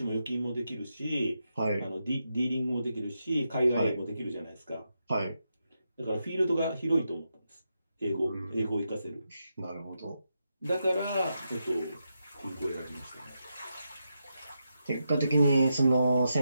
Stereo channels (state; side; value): inverted; both; correlation -0.85